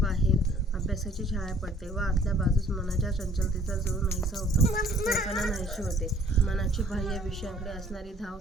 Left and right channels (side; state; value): both; normal; correlation 0.56